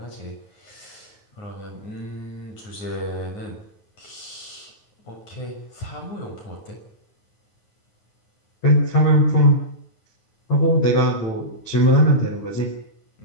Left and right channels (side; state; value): right; late; 9.5 ms